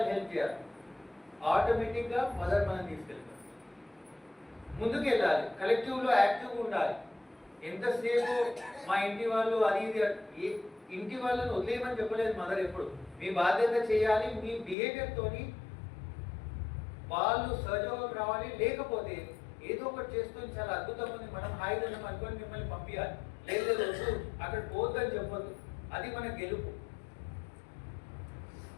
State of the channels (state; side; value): drops out; right; at 14.8 s